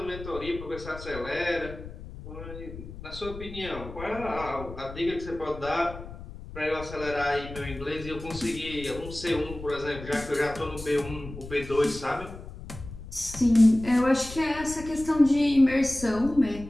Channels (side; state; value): left; noise; rumble, 13 dB below the sound